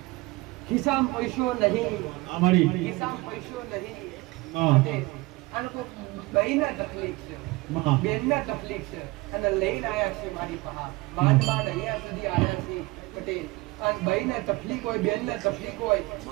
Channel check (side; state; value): left; quieter; 22.6 dB